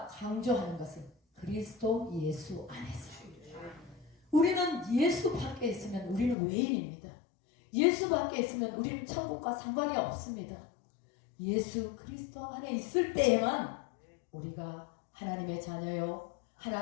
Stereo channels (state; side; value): drops out; right; at 6.4 s